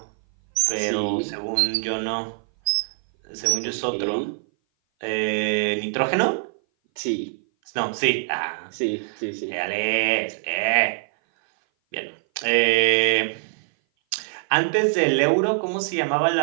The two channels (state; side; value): silent; left; 58 dB below the other